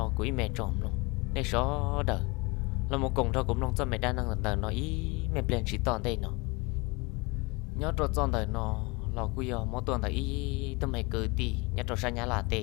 quỹ mẹ trồng lòng nên chó đỡ là một cùng thôi cũng lòng cho mẹ đa năng lần nó ý mẹ bền chỉ toàn đây nó nhớ cho toàn đời nó là quy giờ mỗi tuần là ý tôi mày cứ đi nhớ cho sang nhà là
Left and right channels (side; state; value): right; quieter; 26.4 dB